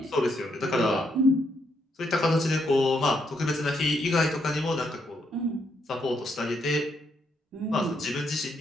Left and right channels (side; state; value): both; normal; correlation 0.76